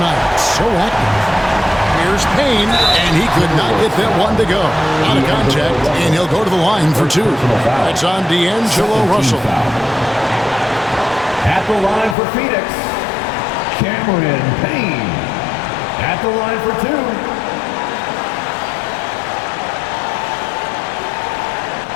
So active. Here's Payne, and he could not get that one to go. Out of contact, and he'll go to the line for 2. It's on D'Angelo Russell. At the line for Phoenix, Cameron Payne. At the line for 2.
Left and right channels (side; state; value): right; drops out; at 12.2 s